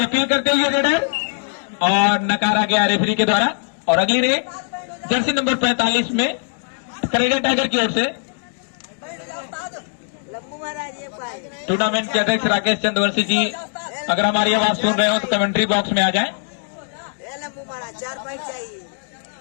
अपील करते हुए रेडर और नकारा गया रेफरी के द्वारा। और अगली रेड जर्सी नंबर 45 में खरटिया टाइगर की ओर से टूर्नामेंट के अध्यक्ष राकेश चंद्रवंशी जी, अगर हमारी आवाज सुन रहे हो तो कमेंट्री बॉक्स में आ जाएं। 4 पॉइंट चाहिए।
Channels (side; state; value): right; silent; digital silence